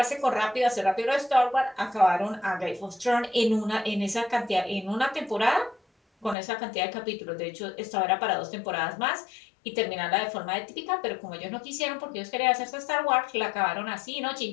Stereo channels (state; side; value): drops out; right; at 6.4 s